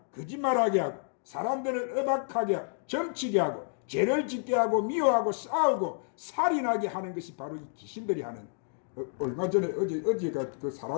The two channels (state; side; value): silent; right; digital silence